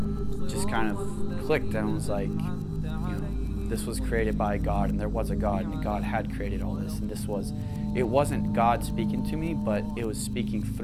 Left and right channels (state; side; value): identical; both; correlation 1.00